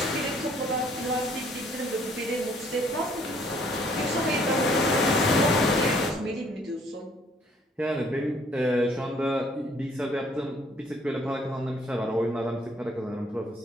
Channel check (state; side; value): normal; both; correlation 0.62